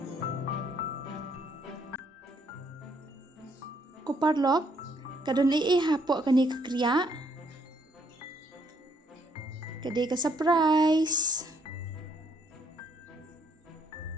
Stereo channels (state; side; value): normal; both; correlation 0.69